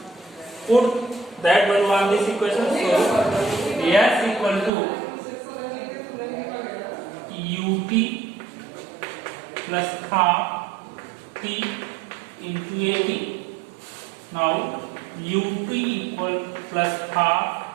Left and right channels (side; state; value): left; drops out; at 4.7 s